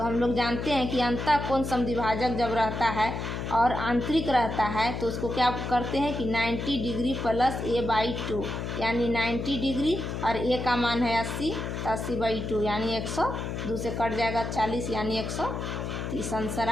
हम लोग जानते हैं कि अंतः कोण समद्विभाजक जब रहता है और आंतरिक रहता है तो उसको क्या करते हैं कि 90 डिग्री प्लस A/2 यानी 90 डिग्री और A का मान है 80 तो 80/2 यानी 100, 2 से कट जाएगा 40 यानी 130 आंसर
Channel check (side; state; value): left; noise; hum, 4 dB below the sound